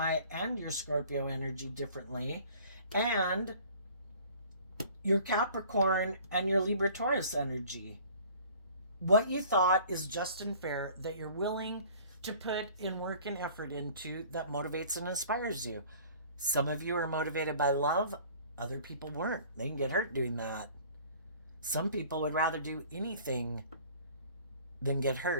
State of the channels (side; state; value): both; inverted; correlation -0.50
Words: and your Scorpio energy differently, and your Capricorn and your Libra Taurus energy. What you thought is just and fair, that you're willing to put in work and effort into, that motivates and inspires you. Some of you are motivated by love. Other people weren't. They can get hurt doing that. Some people would rather do anything than get